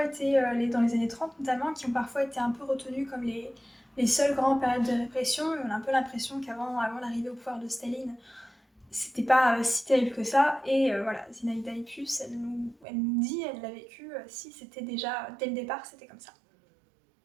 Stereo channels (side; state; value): left; drops out; at 12.9 s